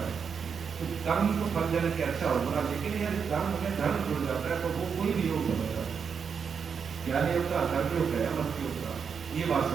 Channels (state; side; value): quieter; left; 6.4 dB